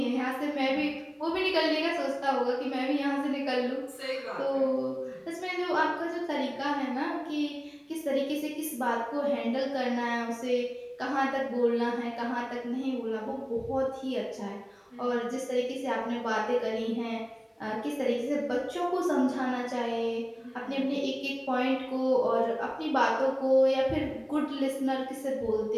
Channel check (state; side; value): identical; both; correlation 1.00